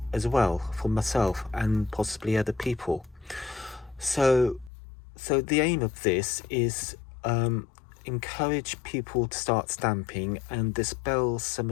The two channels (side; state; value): right; drops out; at 4.7 s